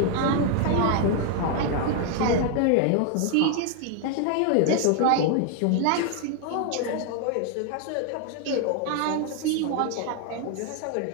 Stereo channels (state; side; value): different; both; correlation 0.00